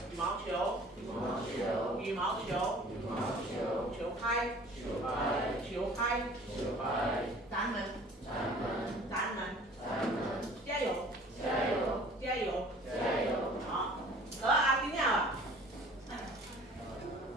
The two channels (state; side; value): normal; both; correlation 0.48